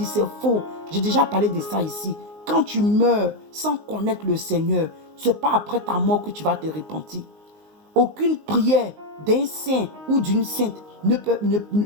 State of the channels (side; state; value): left; late; 19 ms